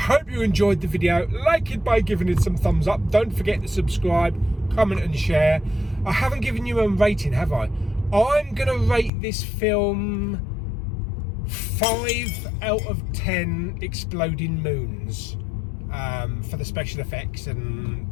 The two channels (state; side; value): drops out; right; at 9.1 s